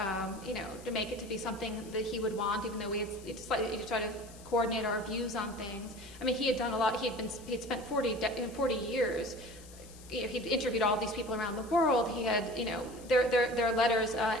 make it to be something that he would want, even though we had slightly tried to coordinate our views on things. I mean, he had done a lot. He'd spent 40 years. He'd interviewed all these people around the world. He had, their letters.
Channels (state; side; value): noise; left; hiss, 20 dB below the sound